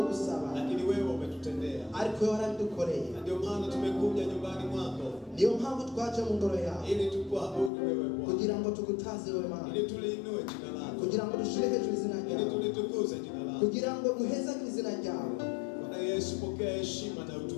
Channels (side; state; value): right; drops out; at 7.7 s